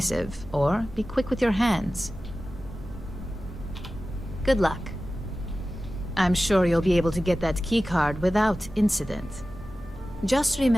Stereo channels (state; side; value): noise; right; hum, 19 dB below the sound